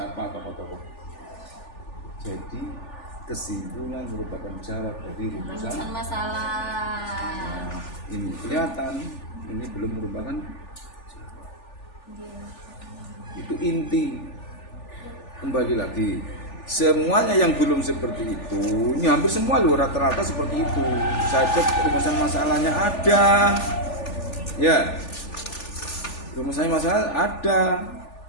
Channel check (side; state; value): right; late; 3.4 ms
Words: tokoh-tokoh. Jadi kesimpulan merupakan jawab dari rumusan masalah. Nah, ini kelihatan ini belum merupakan itu inti. Kembali lagi, semuanya yang belum seperti itu, ini hampir semua loh rata-rata seperti itu. Saya cek rumusan masalahnya ada. Ya. Rumusannya masalah ada.